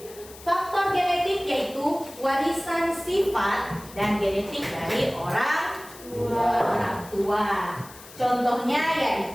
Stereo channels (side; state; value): left; noise; hiss, 19 dB below the sound